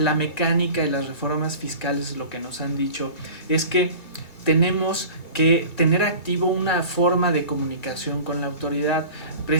mecánica y las reformas fiscales, lo que nos han dicho es que tenemos que tener activo una forma de comunicación con la autoridad.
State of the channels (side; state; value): right; late; 2.1 ms